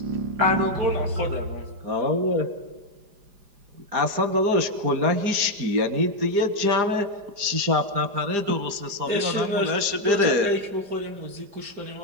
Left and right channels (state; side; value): late; left; 4.9 ms